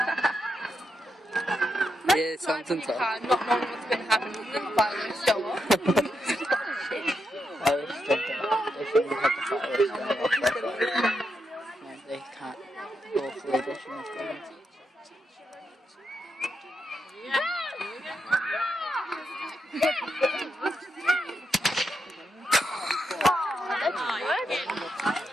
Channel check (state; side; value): normal; both; correlation 0.83